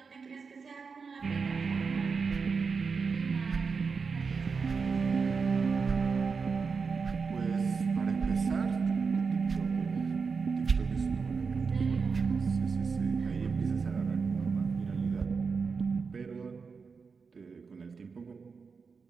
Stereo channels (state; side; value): quieter; left; 5.2 dB